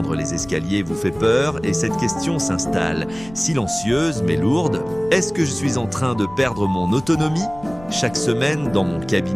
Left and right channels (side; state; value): left; noise; rumble, 19 dB below the sound